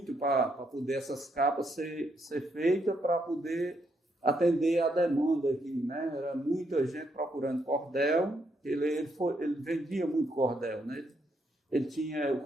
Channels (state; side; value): normal; both; correlation 0.76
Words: para poder essas capas ser feitas para poder atender a demanda aqui, né? Era muita gente procurando cordel. Ele vendia muito cordel, né? O